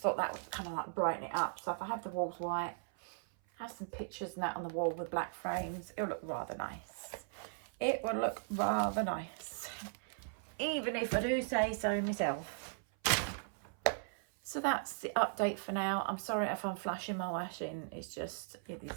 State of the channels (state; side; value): silent; left; 52 dB below the other